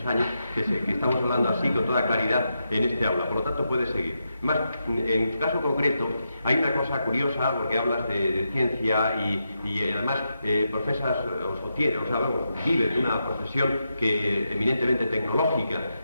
años que estamos hablando así con toda claridad en este aula, por lo tanto puedes seguir. Más, en tu caso concreto, hay una cosa curiosa, porque hablas de ciencia y además profesas vive de una profesión eminentemente tecnológica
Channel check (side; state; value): both; inverted; correlation -0.85